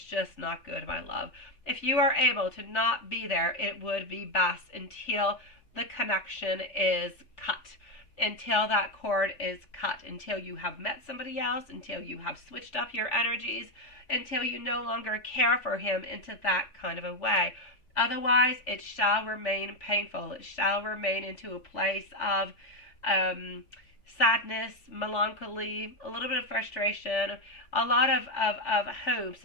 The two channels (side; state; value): right; late; 3.4 ms